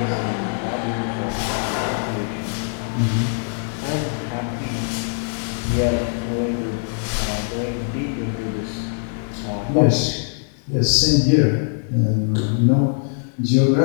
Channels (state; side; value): silent; right; digital silence